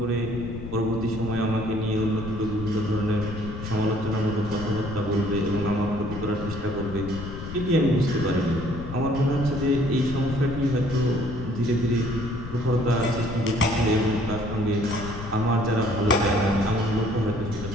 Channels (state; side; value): noise; left; rumble, 9 dB below the sound